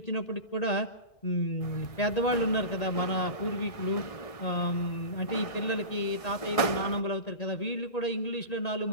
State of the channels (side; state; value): right; late; 1.7 ms